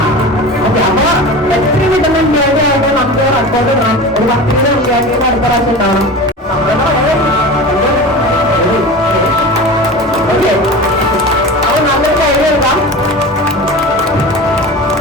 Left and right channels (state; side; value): normal; both; correlation 0.32